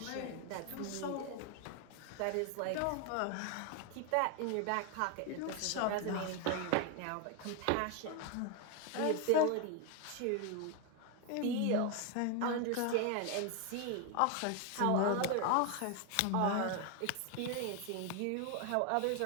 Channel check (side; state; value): both; different; correlation 0.01